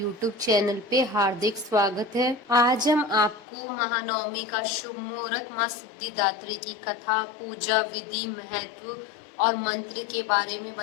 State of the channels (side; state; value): right; drops out; at 3.5 s